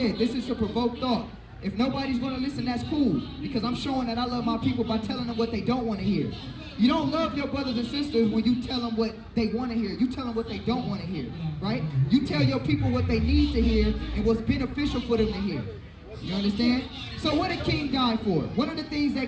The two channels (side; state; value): both; identical; correlation 1.00